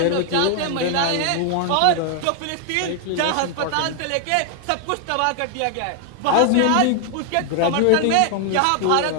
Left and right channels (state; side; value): different; both; correlation 0.00